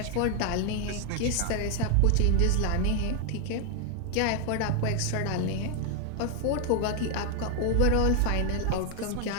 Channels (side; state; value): both; different; correlation 0.01